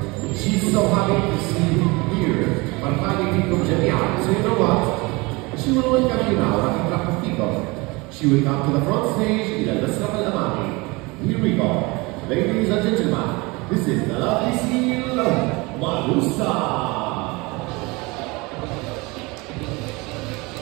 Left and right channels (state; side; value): quieter; left; 25.1 dB